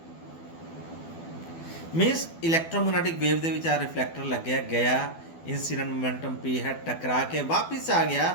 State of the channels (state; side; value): late; right; 12 ms